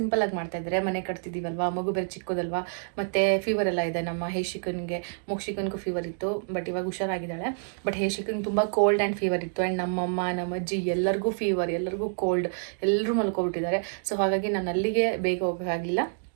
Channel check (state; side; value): silent; left; digital silence